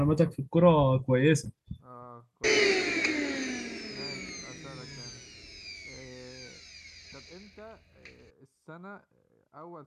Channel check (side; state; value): both; identical; correlation 1.00